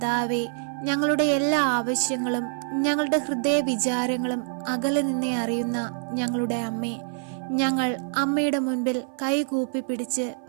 ഞങ്ങളുടെ എല്ലാ ആവശ്യങ്ങളും ഞങ്ങളുടെ ഹൃദയ വിചാരങ്ങളും അകലെ നിന്നേ അറിയുന്ന ഞങ്ങളുടെ അമ്മേ, ഞങ്ങൾ അമ്മയുടെ മുൻപിൽ കൈകൂപ്പി പിടിച്ച്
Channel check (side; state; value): left; silent; 55 dB below the other